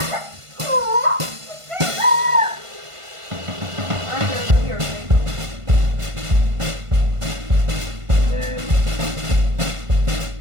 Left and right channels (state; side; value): late; left; 1.5 ms